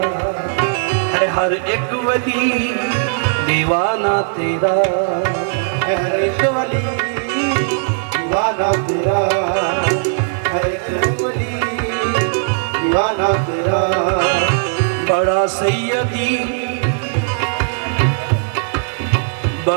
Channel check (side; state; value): left; silent; digital silence